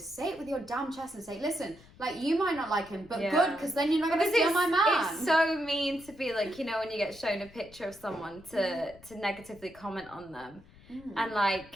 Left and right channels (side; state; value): left; noise; rumble, 23 dB below the sound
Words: it with your damn chest and say, listen, like, you might not like him, but good, because then you're not going to steal my man. It's so mean to be like, you know, when you get shown a picture of someone to negatively comment on them. And